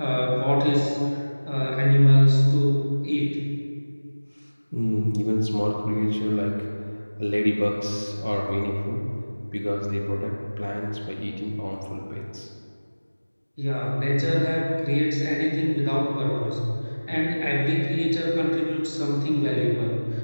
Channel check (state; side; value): inverted; both; correlation -1.00